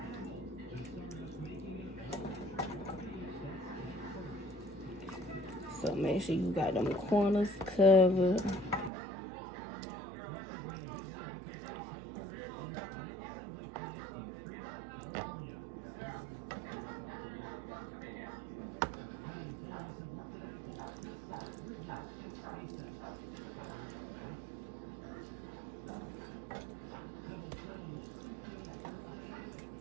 So make sure you got them corners covered.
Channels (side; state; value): left; drops out; at 8.9 s